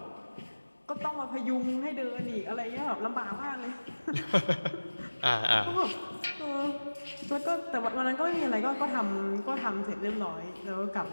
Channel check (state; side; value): inverted; both; correlation -1.00